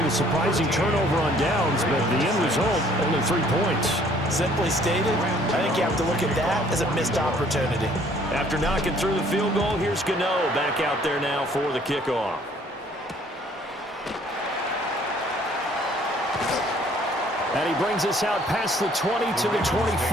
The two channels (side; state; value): both; normal; correlation 0.59